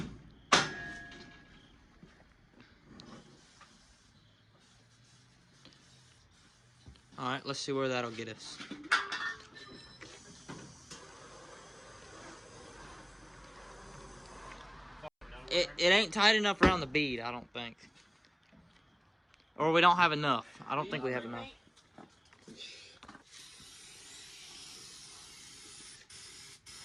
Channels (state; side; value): identical; both; correlation 1.00